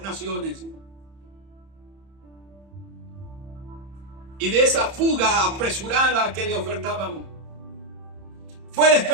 naciones y de esa fuga apresurada que le ofertaban. Fue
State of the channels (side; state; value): left; late; 30 ms